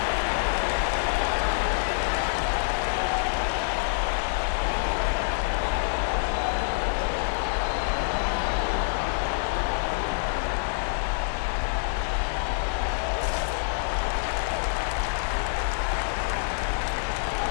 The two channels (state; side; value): silent; right; digital silence